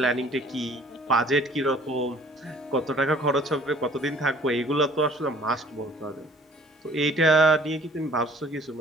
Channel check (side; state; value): both; normal; correlation 0.54